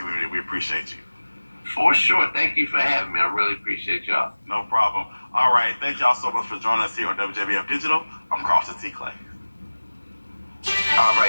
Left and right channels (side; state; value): both; inverted; correlation -1.00